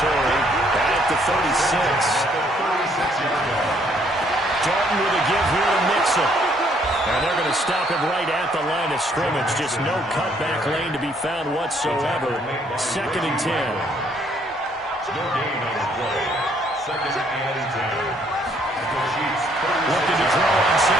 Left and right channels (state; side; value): normal; both; correlation 0.66